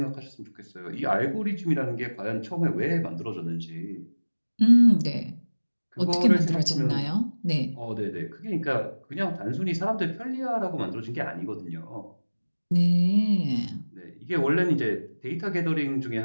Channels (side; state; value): both; inverted; correlation -1.00